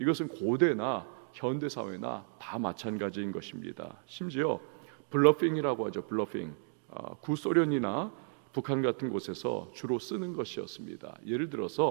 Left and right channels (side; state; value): left; silent; 55 dB below the other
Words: 고대나 현대 사회나 다 마찬가지인 것입니다. 심지어 블러핑이라고 하죠. 블러핑. 구소련이나 북한 같은 곳에서 주로 쓰는 것이었습니다. 예를